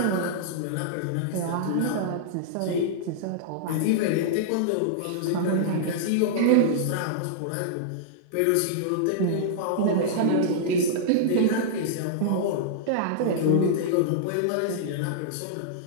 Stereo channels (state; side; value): different; both; correlation -0.02